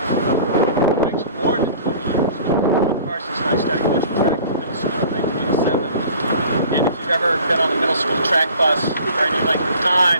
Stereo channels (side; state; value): both; inverted; correlation -0.47